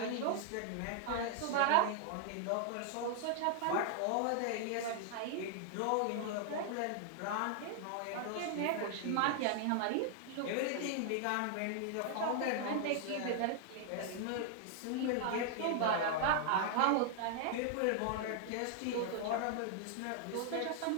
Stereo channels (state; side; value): different; both; correlation 0.00